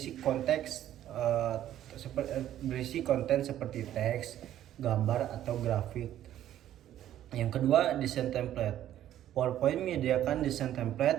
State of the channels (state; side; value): quieter; left; 12.0 dB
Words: konten seperti teks, gambar, atau grafik. Yang kedua, desain template. PowerPoint menyediakan desain